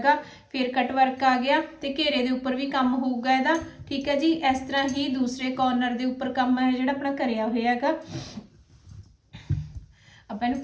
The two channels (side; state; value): both; identical; correlation 1.00